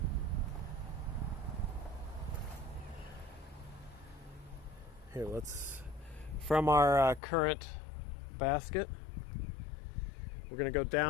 Here, from our current basket, we're gonna go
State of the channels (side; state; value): right; drops out; at 7.2 s